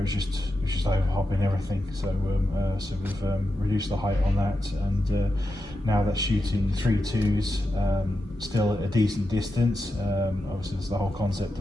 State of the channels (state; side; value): normal; both; correlation 0.88